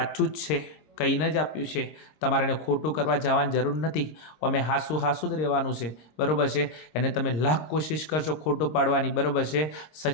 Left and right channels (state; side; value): late; right; 26 ms